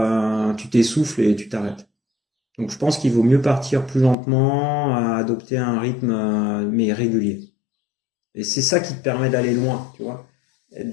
tu t'essouffles et tu t'arrêtes. Donc je pense qu'il vaut mieux partir plus lentement, adopter un rythme mais régulier. Et c'est ça qui te permet d'aller loin, tu vois,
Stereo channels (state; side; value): drops out; right; at 4.2 s